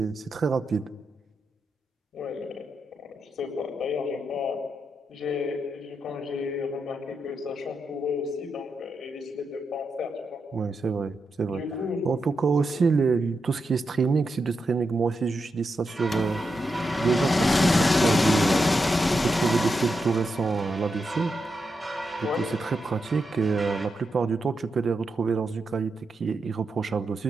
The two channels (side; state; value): both; normal; correlation 0.86